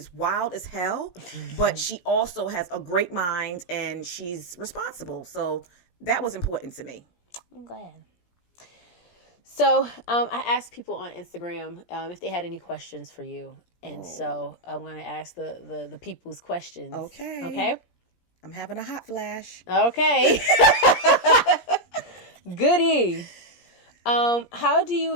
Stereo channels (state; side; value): late; right; 17 ms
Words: wild as hell, but she also has a great mind and she's responsible. So that was important to me. I'm glad. So I asked people on Instagram if they had any questions for you. And so I'm going to ask the people's questions. Okay? I'm having a hot flash. Okay. Goody. How do you